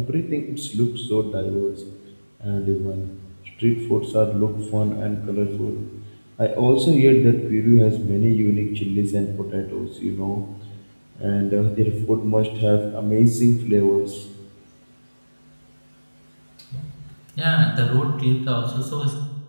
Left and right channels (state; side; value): inverted; both; correlation -1.00